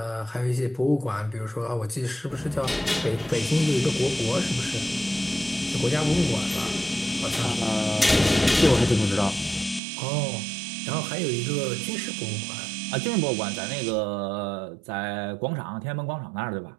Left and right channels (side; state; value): left; drops out; at 9.8 s